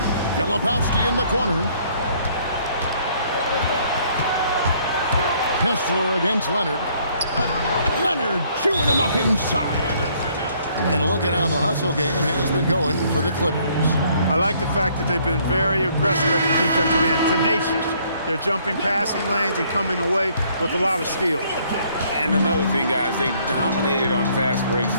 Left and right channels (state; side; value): inverted; both; correlation -0.64